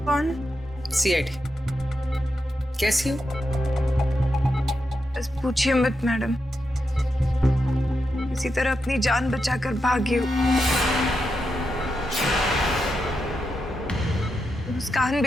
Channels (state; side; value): normal; both; correlation 0.86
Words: कौन? सीआईडी। कैसी हो? बस पूछिए मत मैडम, इसी तरह अपनी जान बचाकर भागी हूँ। मुस्कान